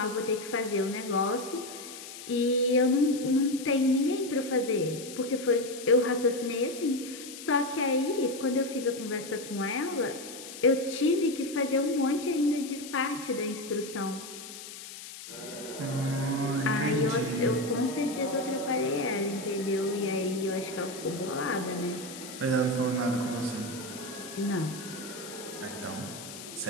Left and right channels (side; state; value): left; noise; hiss, 13 dB below the sound